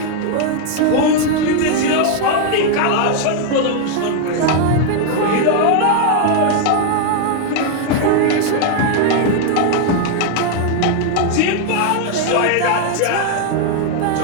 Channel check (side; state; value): both; different; correlation 0.00